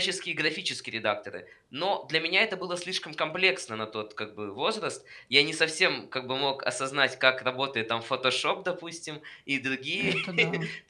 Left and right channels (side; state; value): both; identical; correlation 1.00